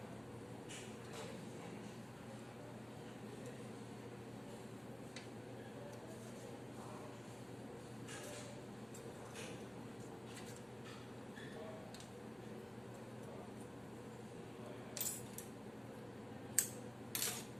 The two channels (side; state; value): right; noise; hum, 24 dB below the sound